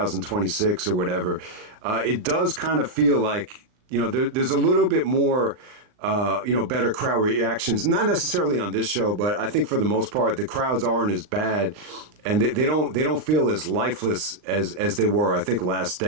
or whatever, it does kind of feel like there's a little bit more. Better crowd reactions. Not necessarily on this show, but I think for the most part, the crowds aren't as bad, and they don't feel as lifeless as they were. I think last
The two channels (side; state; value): left; late; 39 ms